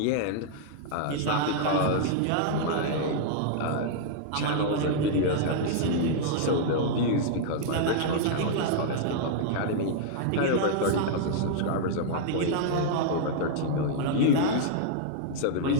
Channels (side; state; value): both; different; correlation -0.01